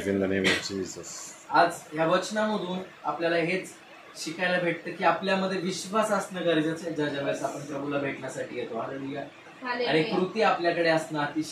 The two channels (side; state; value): both; identical; correlation 1.00